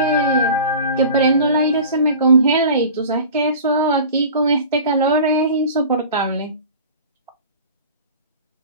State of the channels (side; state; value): both; inverted; correlation -0.39